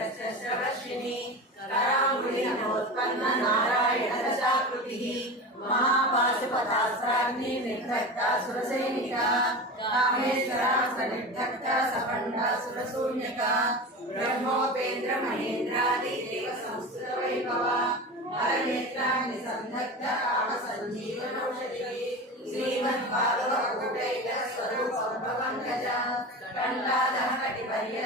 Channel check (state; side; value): normal; both; correlation 0.28